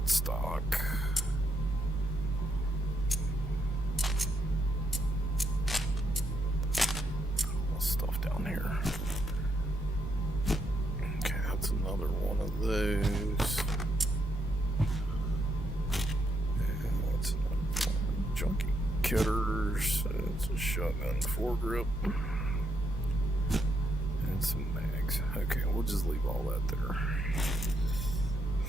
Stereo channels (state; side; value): normal; both; correlation 0.78